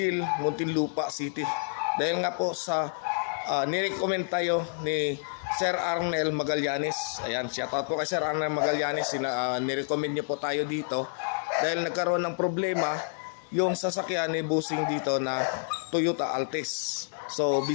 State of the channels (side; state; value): right; silent; digital silence